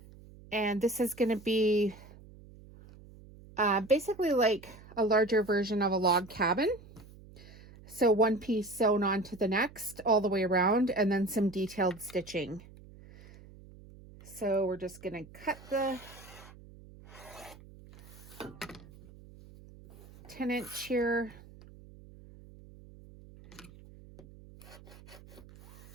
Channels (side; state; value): right; noise; hum, 20 dB below the sound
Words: and this is going to be basically like a larger version of a log cabin. So one piece sewn onto the next all the way around, and then some detailed stitching. So we're just going to cut the 10-inch here.